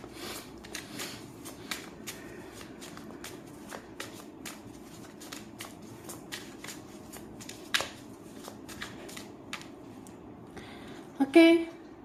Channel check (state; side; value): identical; both; correlation 1.00